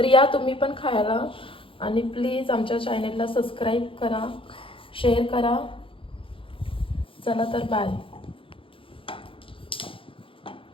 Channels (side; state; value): right; late; 0.26 ms